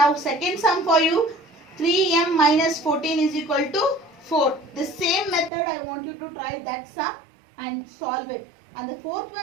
second sum for you. 3m minus 14 is equal to 4. The same method I want you to try that sum and solve it. And the fourth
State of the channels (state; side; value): drops out; left; at 5.5 s